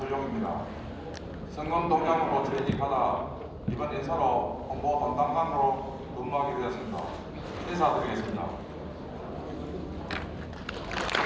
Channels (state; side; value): identical; both; correlation 1.00